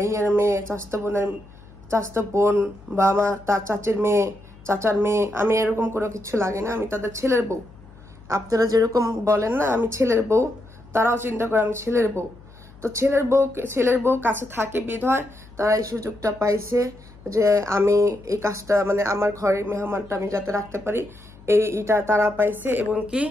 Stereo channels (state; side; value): noise; left; hum, 22 dB below the sound